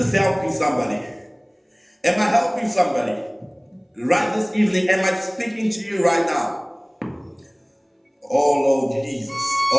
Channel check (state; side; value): identical; both; correlation 1.00